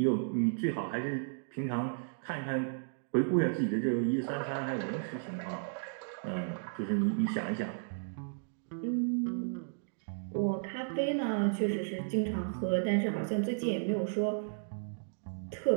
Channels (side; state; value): left; silent; digital silence